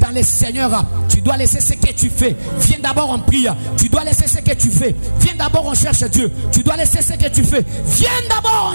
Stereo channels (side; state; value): both; inverted; correlation -1.00